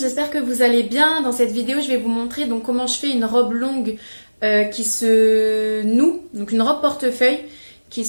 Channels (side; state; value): both; inverted; correlation -1.00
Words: que vous allez bien. Dans cette vidéo, je vais vous montrer donc comment je fais une robe longue qui se noue, donc une robe portefeuille qui